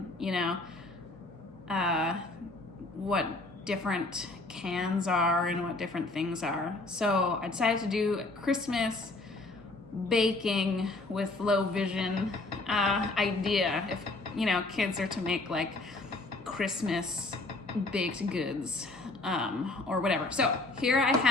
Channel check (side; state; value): right; quieter; 3.1 dB